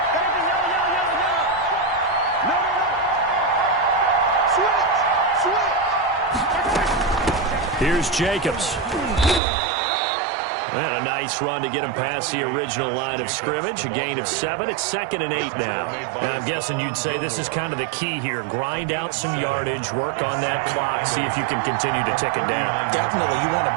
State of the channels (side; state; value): left; drops out; at 9.4 s